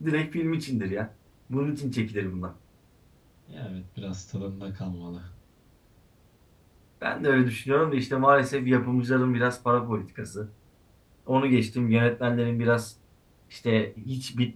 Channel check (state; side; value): identical; both; correlation 1.00